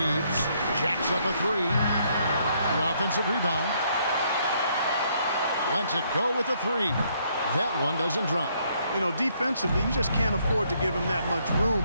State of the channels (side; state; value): both; inverted; correlation -0.70